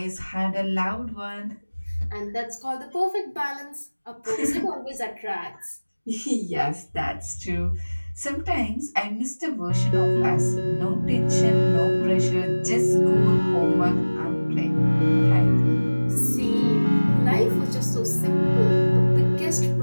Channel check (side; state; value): both; inverted; correlation -1.00